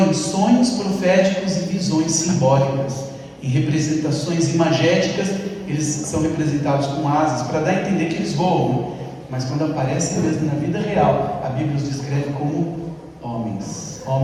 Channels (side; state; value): both; identical; correlation 1.00